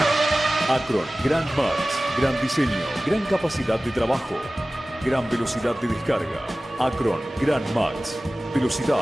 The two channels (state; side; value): normal; both; correlation 0.97